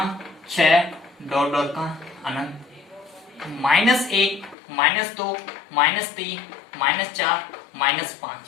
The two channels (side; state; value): right; drops out; at 4.5 s